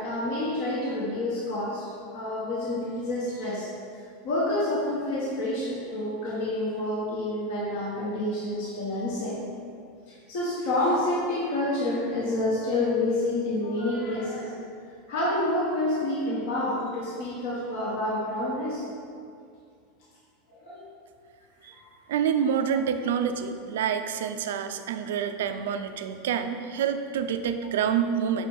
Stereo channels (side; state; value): both; normal; correlation 0.06